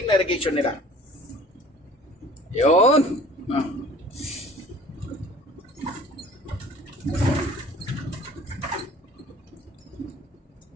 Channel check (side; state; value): both; normal; correlation 0.48